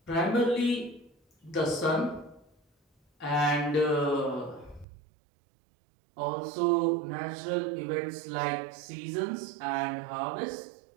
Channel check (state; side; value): drops out; left; at 4.9 s